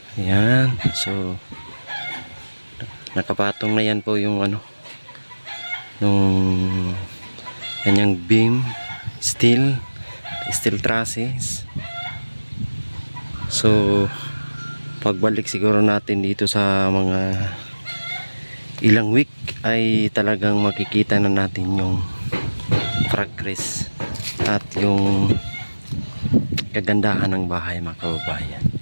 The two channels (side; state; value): both; inverted; correlation -1.00